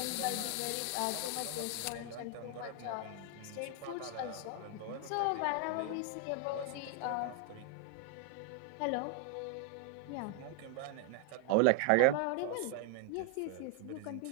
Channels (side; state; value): both; different; correlation 0.00